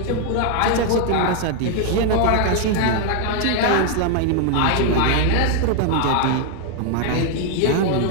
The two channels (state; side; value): different; both; correlation 0.00